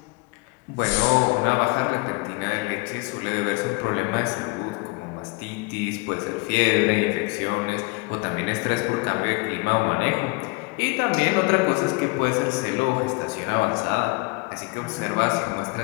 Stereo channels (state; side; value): quieter; right; 27.6 dB